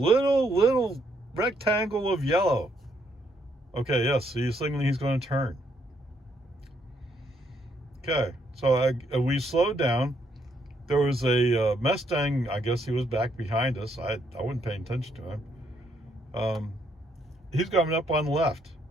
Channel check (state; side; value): normal; both; correlation 0.72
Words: rectangle of yellow. Okay, yes, he's signaling he's going to turn. Okay, so we slowed down. There was a Mustang. I guess he was back behind us. I wasn't paying attention to him. He's coming up on the left.